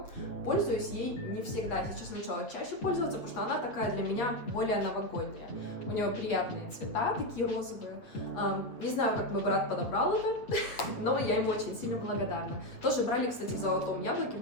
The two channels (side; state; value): right; late; 8.3 ms